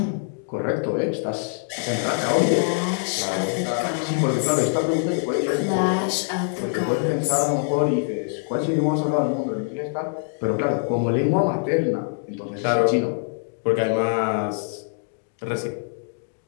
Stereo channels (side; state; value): right; silent; digital silence